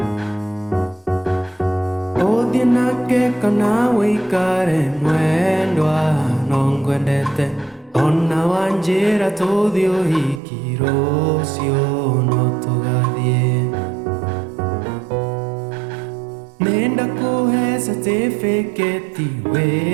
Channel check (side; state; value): left; drops out; at 10.4 s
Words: Ũthiĩ nake kana wĩikare mwendwa no ngwendete, ona wanjĩra tũthiĩ ũhiki rũciũ no tũgathiĩ. Nĩnda kũhe certificate